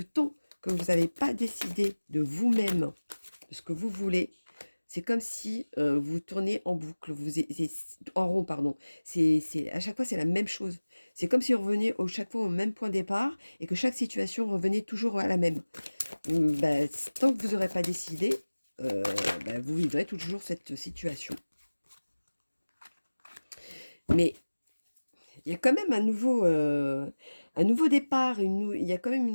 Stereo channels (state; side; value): inverted; both; correlation -1.00